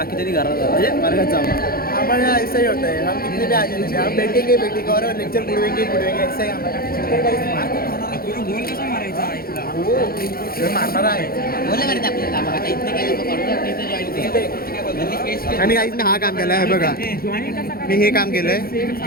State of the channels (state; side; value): late; right; 0.44 ms